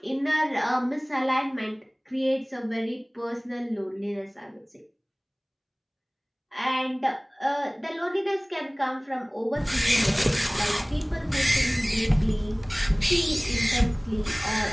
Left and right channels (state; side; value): identical; both; correlation 1.00